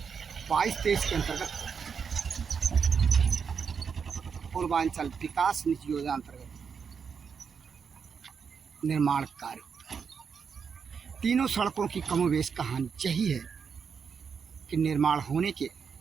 के अंतर्गत पूर्वांचल विकास निधि योजना अंतर्गत निर्माण कार्य, तीनों सड़कों की कमोवेश कहानी यही है कि निर्माण होने के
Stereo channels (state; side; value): quieter; left; 6.3 dB